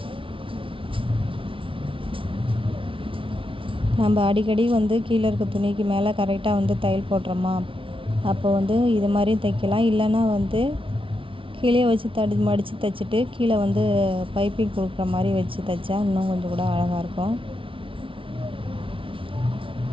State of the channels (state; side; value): late; left; 0.25 ms